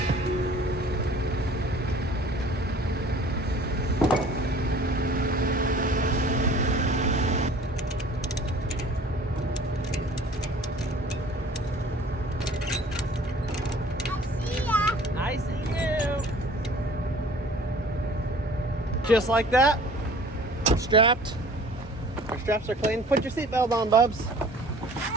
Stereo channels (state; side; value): normal; both; correlation 0.49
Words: Just like that, strapped. Our straps are clean. Put your seatbelt on, Bubs.